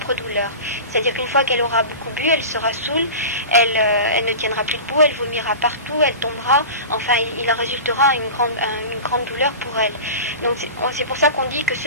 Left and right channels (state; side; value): inverted; both; correlation -0.32